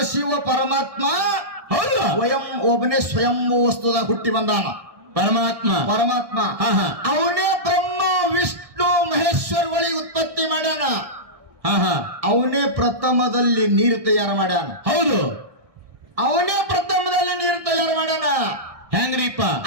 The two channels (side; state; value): left; late; 1.7 ms